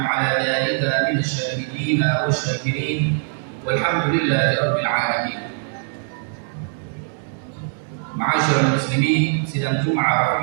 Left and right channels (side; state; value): left; silent; 63 dB below the other